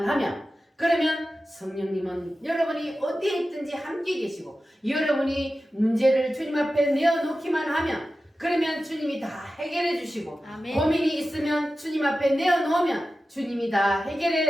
하면 그러면 성령님은 여러분이 어디에 있든지 함께 계시고 여러분이 문제를 주님 앞에 내어놓기만 하면 그러면 주님이 다 해결해 주시고 아멘. 고민이 있으면 주님 앞에 내어놓으면 주님이 다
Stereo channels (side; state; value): both; normal; correlation 0.94